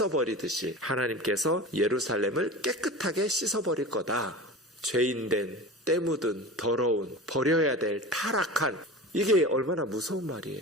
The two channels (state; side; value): normal; both; correlation 0.32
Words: 하나님께서 예루살렘을 깨끗하게 씻어버릴 거다. 죄인된, 때 묻은, 더러운, 버려야 될 타락한, 이게 얼마나 무서운